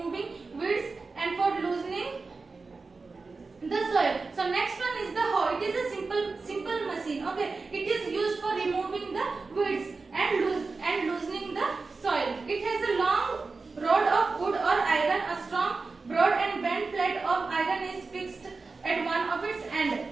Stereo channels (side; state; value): left; quieter; 4.1 dB